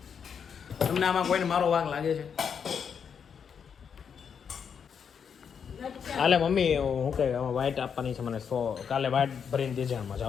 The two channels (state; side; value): quieter; right; 7.0 dB